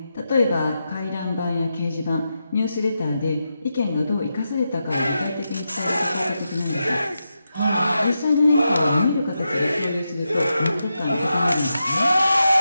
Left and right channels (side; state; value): both; inverted; correlation -0.88